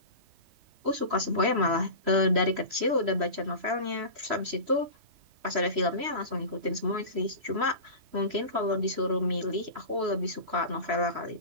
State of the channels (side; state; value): left; late; 3.1 ms